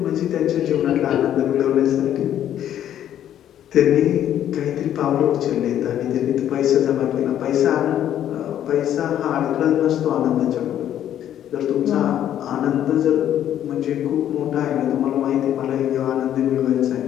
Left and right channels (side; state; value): right; quieter; 10.9 dB